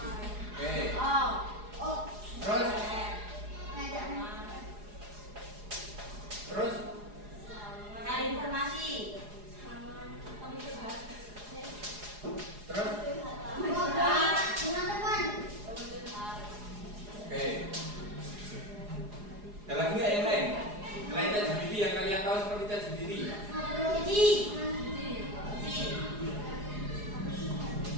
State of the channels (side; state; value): left; late; 4.8 ms